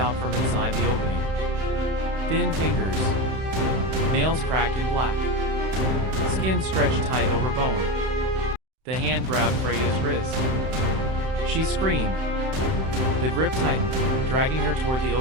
from inside the opening. Thin fingers. Nails cracked and black. Skin stretched tight over bone. The hand grabbed Freya's wrist. She screamed. The grip tightened, dragging her toward the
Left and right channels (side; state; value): left; late; 31 ms